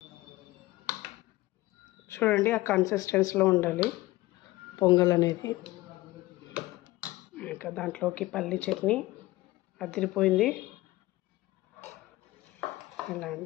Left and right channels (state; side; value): quieter; right; 18.7 dB